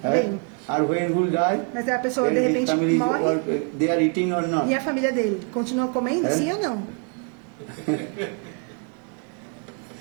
Vem. Or when who die? Mas aí a pessoa de then his repente family morre or, they are eating or not? e a família dele continua comendo, sim ou não?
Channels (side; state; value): left; quieter; 38.9 dB